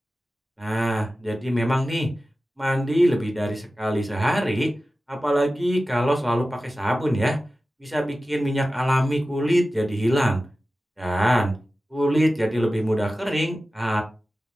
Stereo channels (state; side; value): normal; both; correlation 0.95